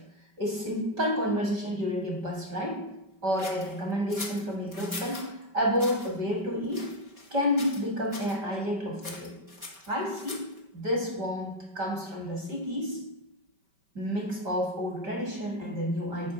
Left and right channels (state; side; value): late; left; 5.2 ms